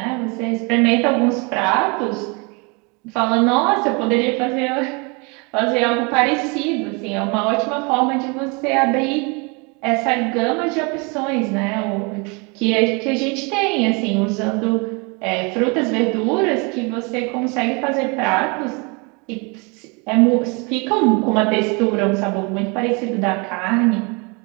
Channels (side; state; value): left; quieter; 30.8 dB